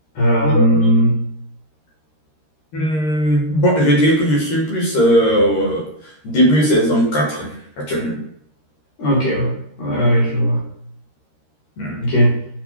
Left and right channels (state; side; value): late; right; 13 ms